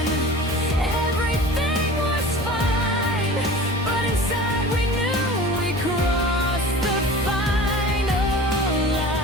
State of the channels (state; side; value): normal; both; correlation 0.39